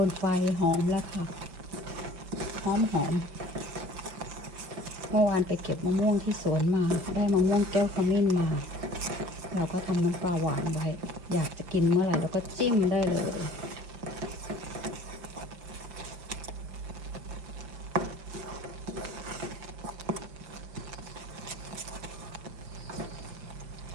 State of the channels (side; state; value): left; late; 5.8 ms